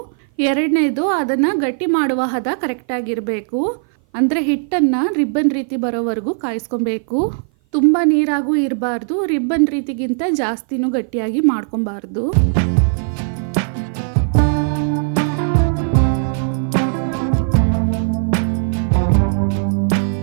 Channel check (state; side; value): silent; left; 56 dB below the other